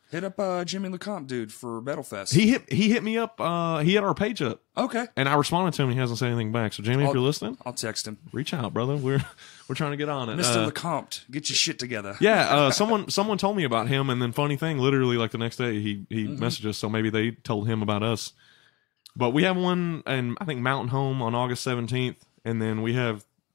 Hit up Jimmy LeCompte, dude, for Battlefest. He hit me up. He had our page up. Okay. And I responded to him. He hasn't said anything back. So Jimmy, if you're listening, I'll text him. Reach out, brother. We're trying to get on it. Mr. LeCompte, get your shit together. Yeah. Someone told me about him, and then funny thing, literally like the next day he messaged us. So maybe they told him about us. But we have one in I think Mountain Home on August 17th, and then we have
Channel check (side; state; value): right; quieter; 22.8 dB